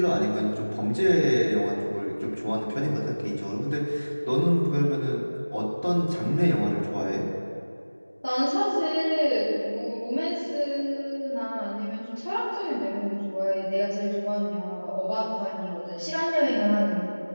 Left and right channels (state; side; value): inverted; both; correlation -1.00